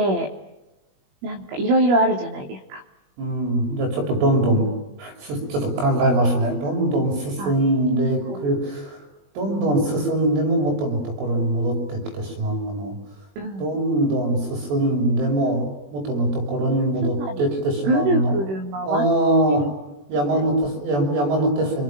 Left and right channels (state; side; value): late; left; 21 ms